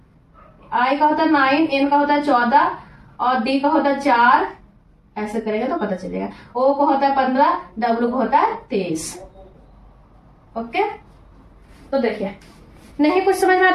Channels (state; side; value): identical; both; correlation 1.00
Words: आई का होता है 9, एन का होता है 14 और डी का होता है 4, ऐसे करेंगे तो पता चलेगा। ओ को होता है 15, डब्ल्यू को होता है 23। ओके तो देखिए नहीं कुछ समझ में आया